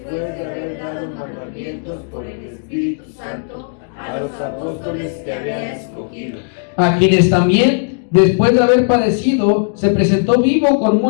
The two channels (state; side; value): silent; right; digital silence